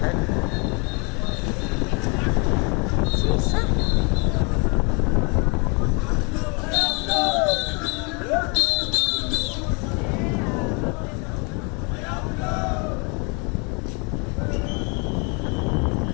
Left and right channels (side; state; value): right; quieter; 31.5 dB